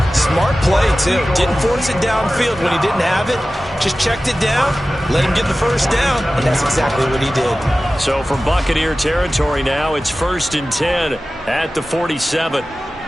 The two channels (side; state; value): both; normal; correlation 0.96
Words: Smart play, too. Didn't force it downfield when he didn't have it. Just checked it down, let him get the first down, and that's exactly what he did. So from Buccaneer territory now, it's 1st and 10 at the 47.